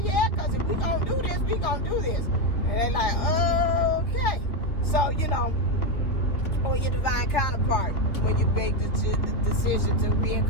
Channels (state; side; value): late; right; 3.0 ms